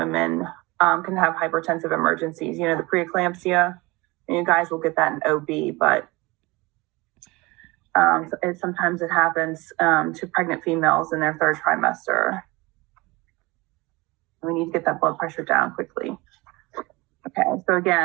can have hypertensive emergencies. The preeclampsia, and you guys will get that in OB, but sometimes it happens to pregnant females in their third trimester. We need to get that blood pressure down quickly. Okay, so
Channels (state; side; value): quieter; left; 23.1 dB